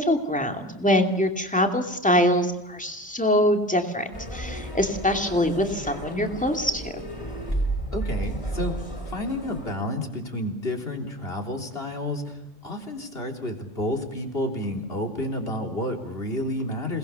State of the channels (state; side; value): normal; both; correlation 0.35